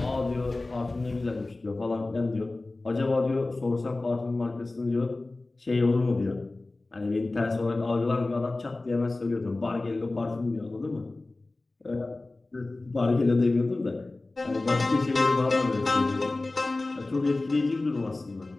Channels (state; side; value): quieter; right; 3.1 dB